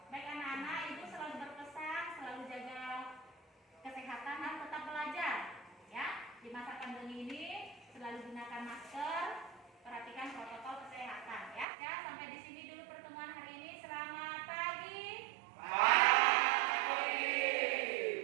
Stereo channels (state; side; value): drops out; left; at 11.7 s